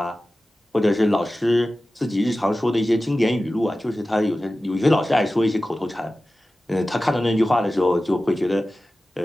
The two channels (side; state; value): both; normal; correlation 0.95